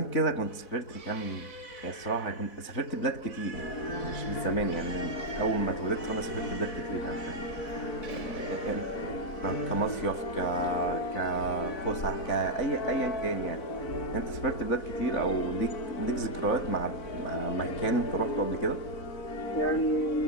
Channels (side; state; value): right; late; 4.0 ms